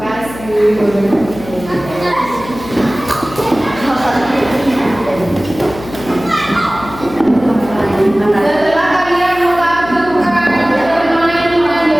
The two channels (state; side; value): noise; left; hum, 14 dB below the sound